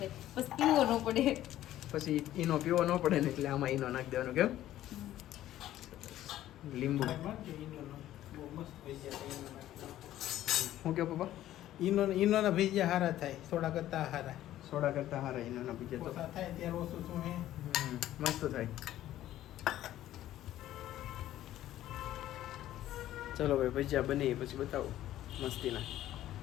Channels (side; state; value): right; quieter; 13.4 dB